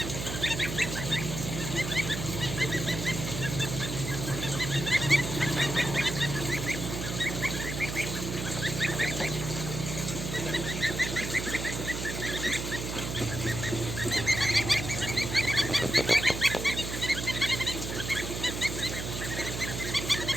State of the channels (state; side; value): noise; right; hum, 5 dB below the sound